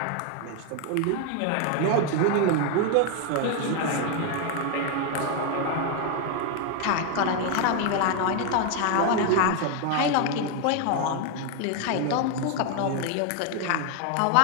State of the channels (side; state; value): both; different; correlation 0.01